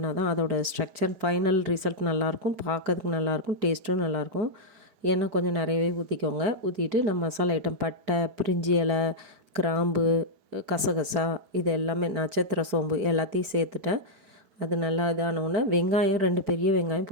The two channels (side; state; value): left; late; 4.9 ms